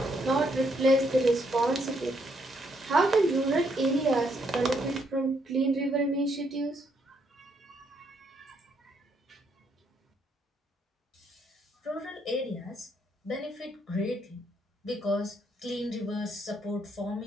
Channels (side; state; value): both; normal; correlation 0.73